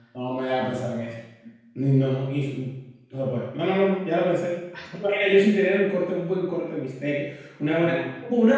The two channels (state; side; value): identical; both; correlation 1.00